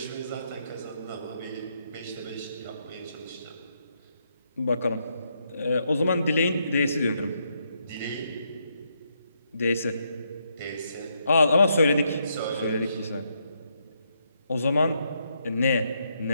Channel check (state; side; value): inverted; both; correlation -0.78